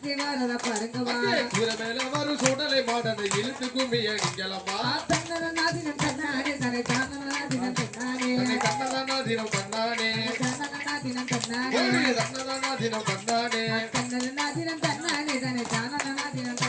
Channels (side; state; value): both; identical; correlation 1.00